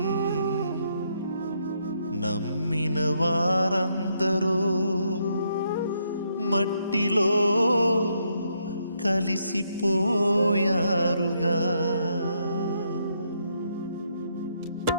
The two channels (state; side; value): inverted; both; correlation -0.76